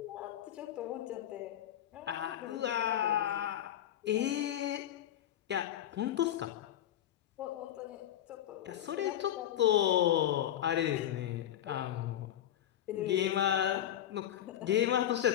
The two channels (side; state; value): right; quieter; 11.4 dB